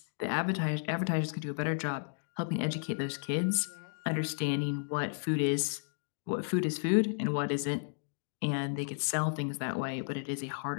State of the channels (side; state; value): right; silent; digital silence